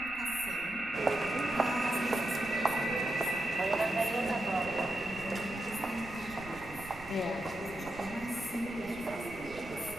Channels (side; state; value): right; noise; rumble, 18 dB below the sound